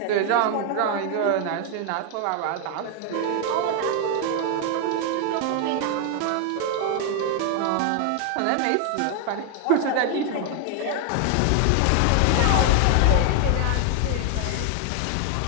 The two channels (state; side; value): different; both; correlation 0.00